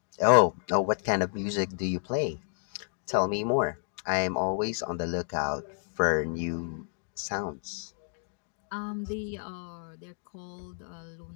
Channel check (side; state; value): right; silent; digital silence